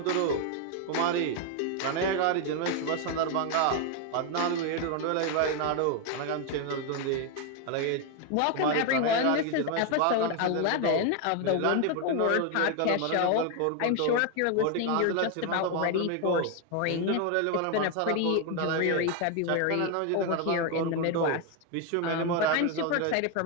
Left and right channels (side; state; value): both; different; correlation 0.01